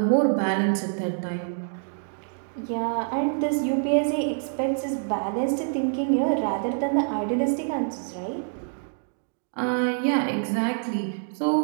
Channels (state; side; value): silent; left; digital silence